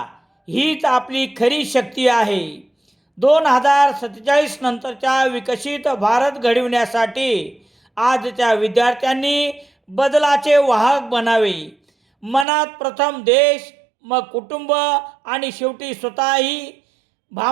हीच आपली खरी शक्ती आहे. 2047 नंतरचा विकसित भारत घडविण्यासाठी आजच्या विद्यार्थ्यांनी बदलाचे वाहक बनावे. मनात प्रथम देश, मग कुटुंब आणि शेवटी स्वतः ही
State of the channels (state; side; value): drops out; left; at 12.5 s